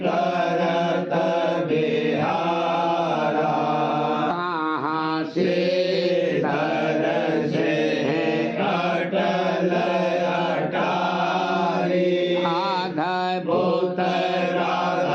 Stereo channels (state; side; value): identical; both; correlation 1.00